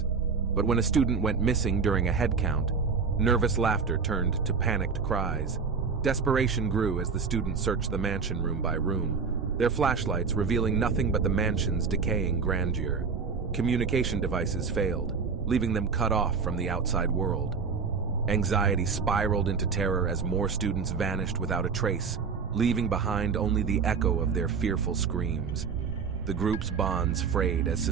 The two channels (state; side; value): quieter; left; 5.5 dB